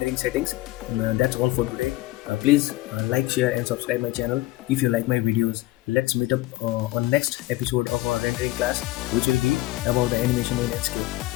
settings. That's all for today. Please like, share and subscribe my channel if you like my videos. Let's meet up on next episode of our rendering class, which will be about the animation in Enscape.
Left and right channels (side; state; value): right; quieter; 17.9 dB